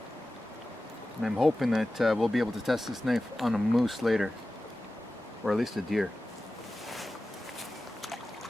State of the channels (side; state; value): both; normal; correlation 0.95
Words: And I'm hoping that we'll be able to test this knife on a moose later. Or at least a deer.